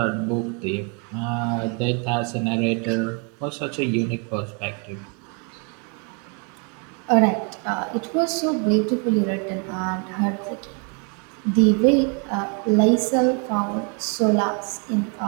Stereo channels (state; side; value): quieter; left; 36.0 dB